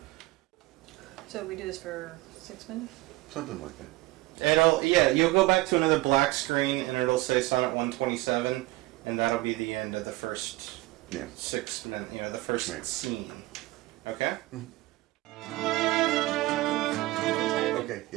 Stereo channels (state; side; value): quieter; left; 19.5 dB